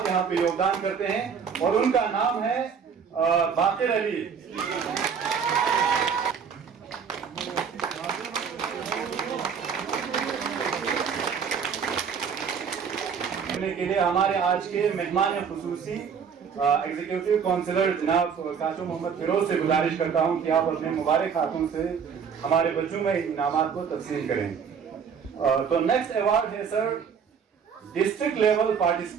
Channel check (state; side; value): quieter; left; 6.8 dB